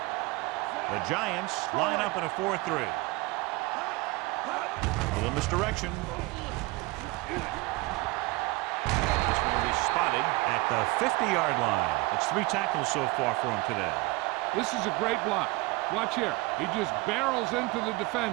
The Giants line up in a 4-3. A little misdirection. This one will be spotted at the 50-yard line. It's 3 tackles so far for him today. This is a great block. Watch here. He just barrels into the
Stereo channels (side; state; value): left; quieter; 23.0 dB